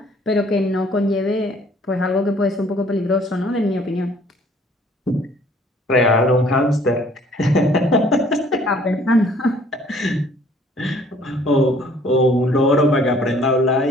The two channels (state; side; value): normal; both; correlation 0.58